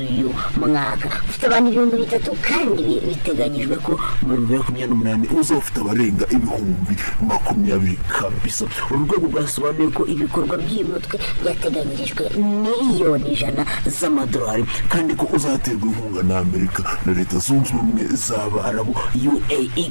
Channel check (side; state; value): both; inverted; correlation -1.00